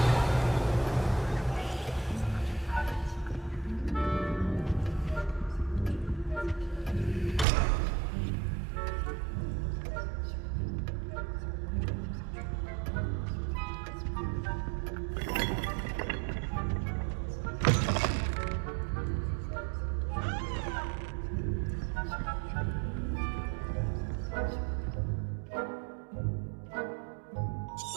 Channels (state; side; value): drops out; left; at 7.5 s